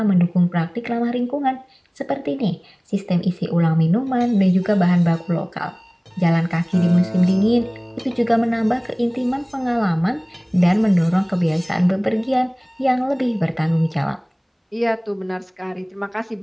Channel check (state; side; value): identical; both; correlation 1.00